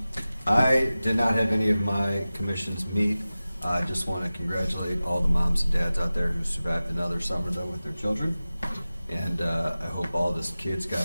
I did not have any of my commissions meet. I just want to congratulate all the moms and dads out there who survived another summer, though, with their children. And I hope all the kids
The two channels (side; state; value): both; inverted; correlation -0.96